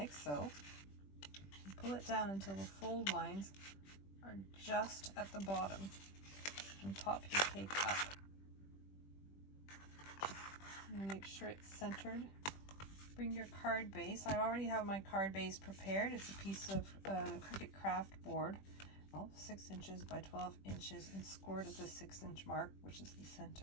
so. And pull it down until the fold lines are just at the bottom, and pop your cake up. And make sure it's centered. Bring your card base. I already have my card base prepared. It's a piece of Cricut craft board, 6 inches by 12 inches, and scored at the 6-inch mark, which is the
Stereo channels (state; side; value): late; right; 20 ms